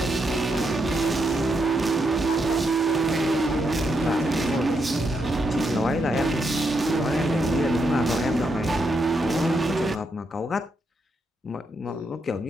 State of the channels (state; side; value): normal; both; correlation 0.80